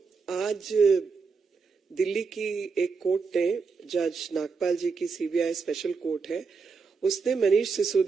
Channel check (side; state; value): left; quieter; 5.0 dB